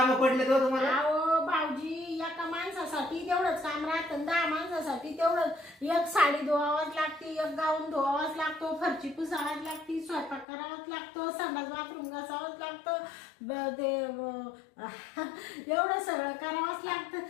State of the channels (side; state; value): right; drops out; at 10.5 s